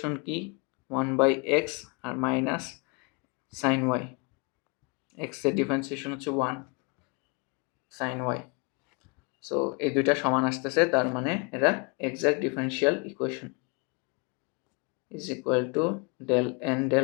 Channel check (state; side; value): quieter; right; 31.6 dB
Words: কি 1 বাই x আর মাইনাস সাইন y, x এর ডিফারেন্সিয়েশন হচ্ছে 1 সাইন y। সো এই দুইটা সমান আসতেছে, তার মানে এটা exact differential equation is equal two del n